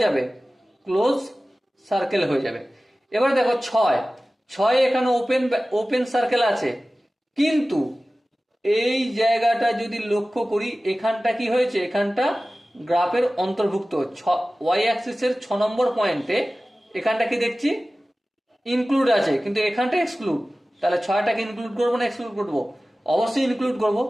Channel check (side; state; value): both; normal; correlation 0.97